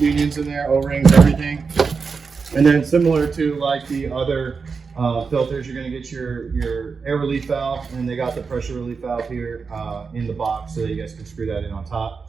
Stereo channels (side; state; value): left; quieter; 5.1 dB